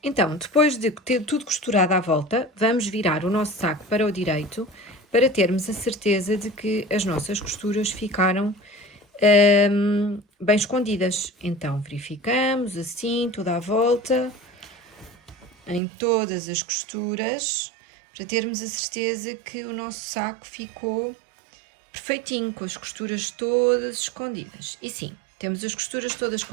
Então, depois de ter tudo costurado à volta, vamos virar o nosso saco para o direito para termos a certeza de que as nossas costuras ficaram bem escondidas. Então, verificamos assim, toda a volta, em todas as costuras, para termos a certeza que o nosso saco ficou perfeitinho, com as costuras todas escondidas. E sim, temos as costuras todas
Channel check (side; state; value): left; drops out; at 15.8 s